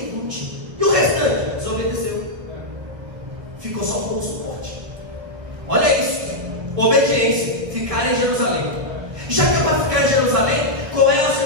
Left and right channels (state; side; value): late; left; 1.3 ms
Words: E o restante? Desobediência.